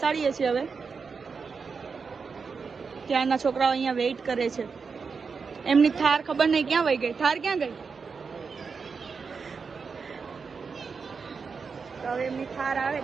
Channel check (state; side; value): quieter; left; 5.3 dB